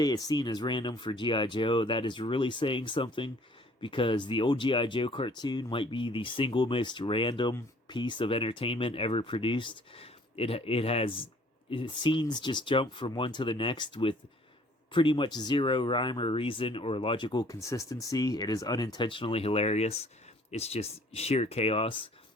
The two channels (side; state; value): both; normal; correlation 0.56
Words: a scene is random for G.I. Joe, that is really saying something, because the old G.I. Joe cartoon might be the single most random piece of entertainment ever produced. Scenes just jump from one to the next with pretty much zero rhyme or reason or logical consistency. It is unintentionally hilarious. It's just sheer chaos.